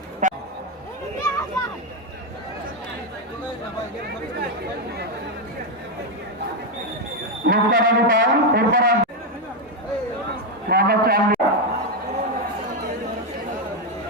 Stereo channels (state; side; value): normal; both; correlation 0.05